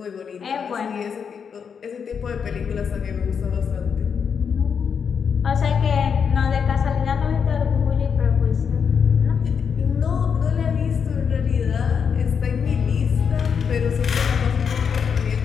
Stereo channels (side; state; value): right; quieter; 6.7 dB